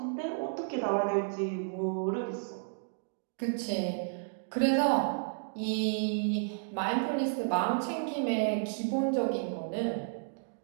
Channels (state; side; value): silent; left; digital silence